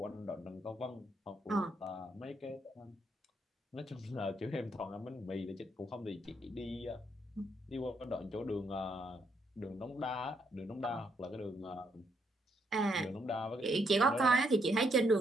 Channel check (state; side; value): normal; both; correlation 0.75